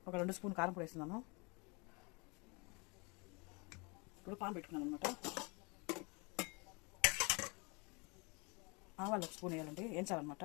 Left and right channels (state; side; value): quieter; right; 30.1 dB